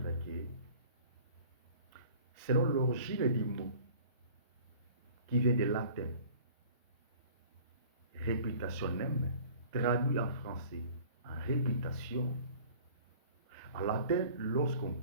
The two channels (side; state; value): both; inverted; correlation -0.48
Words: que, selon l'origine du mot, qui vient du latin, reputationem, traduit en français en réputation, en latin, lorsqu'on